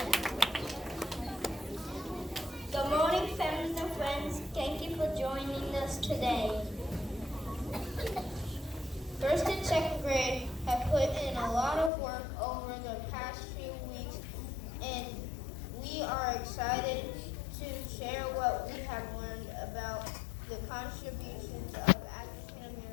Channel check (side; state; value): right; drops out; at 11.9 s